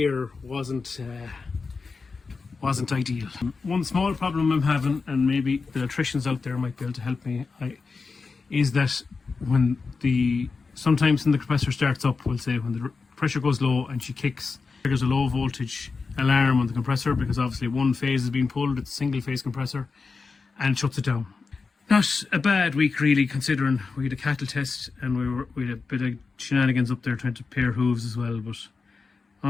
wasn't ideal. One small problem I'm having, and maybe the electricians out there might be able to help me, is that when sometimes when the compressor starts up, we'll say when the pressure goes low and she kicks, there's a low voltage alarm on the compressor because obviously one phase is being pulled, it's a single phase compressor, and it shuts it down. Not a bad week really, considering we had a cattle test and we had a bit of shenanigans up there trying to pair hooves as well, but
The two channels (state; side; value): quieter; right; 4.5 dB